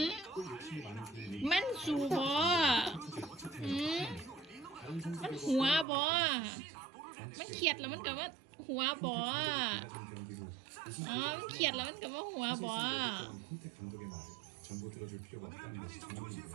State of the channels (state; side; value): drops out; left; at 5.9 s